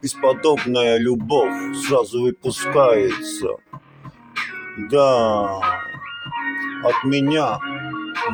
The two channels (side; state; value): both; identical; correlation 1.00